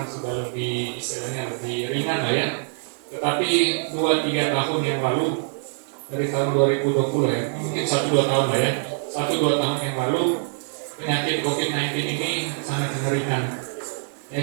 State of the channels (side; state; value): left; silent; 62 dB below the other